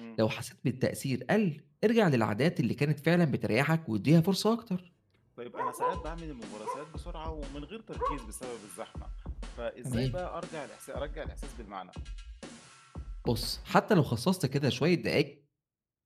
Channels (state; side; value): identical; both; correlation 1.00